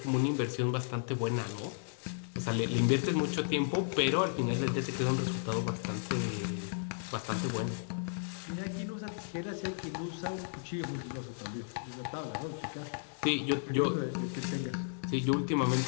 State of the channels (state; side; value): silent; right; digital silence